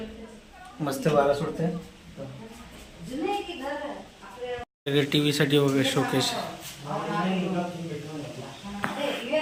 मस्त वारा सुटते. टीव्ही साठी वगैरे शोकेस.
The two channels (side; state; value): both; identical; correlation 1.00